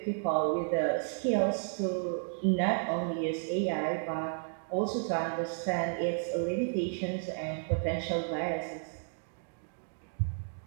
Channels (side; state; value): left; silent; digital silence